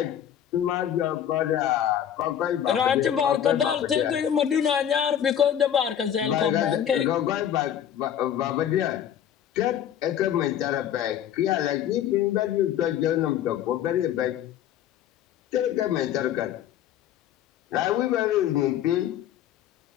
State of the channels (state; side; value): quieter; right; 10.0 dB